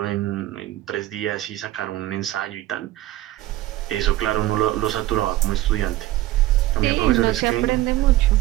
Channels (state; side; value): quieter; left; 15.9 dB